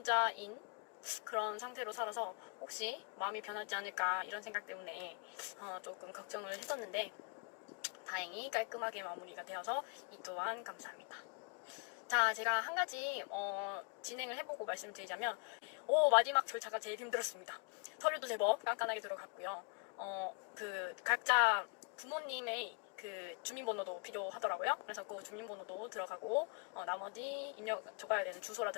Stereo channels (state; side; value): quieter; right; 37.2 dB